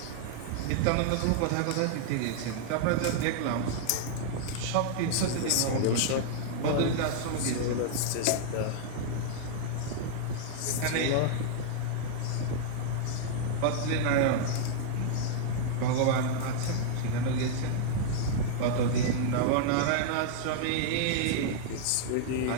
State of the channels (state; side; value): different; both; correlation -0.01